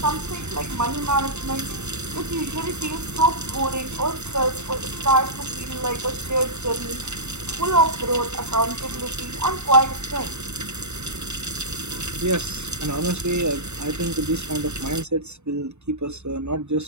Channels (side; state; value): left; late; 0.82 ms